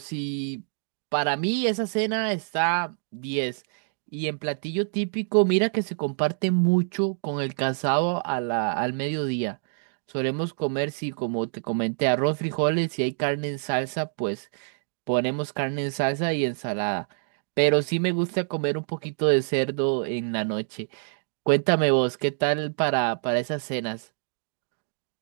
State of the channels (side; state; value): left; silent; digital silence